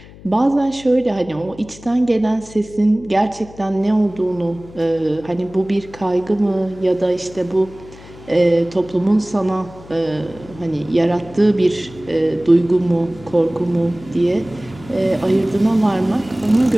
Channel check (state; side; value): noise; left; hum, 20 dB below the sound